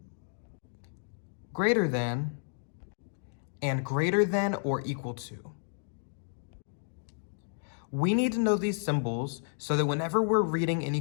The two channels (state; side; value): silent; right; digital silence